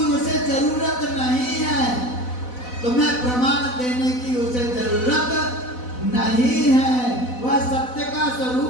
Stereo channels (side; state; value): right; late; 4.0 ms